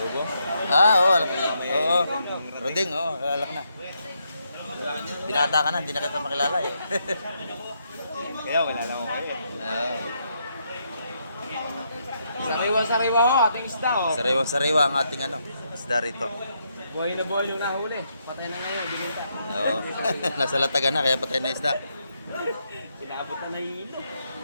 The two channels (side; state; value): both; inverted; correlation -0.78